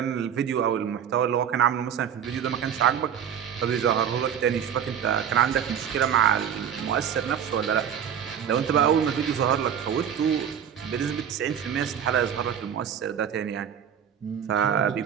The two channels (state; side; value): quieter; left; 8.6 dB